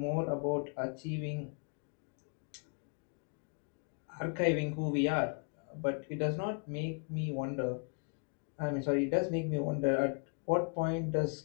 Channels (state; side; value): quieter; right; 38.2 dB